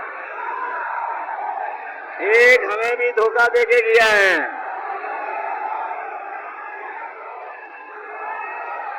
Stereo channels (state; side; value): identical; both; correlation 1.00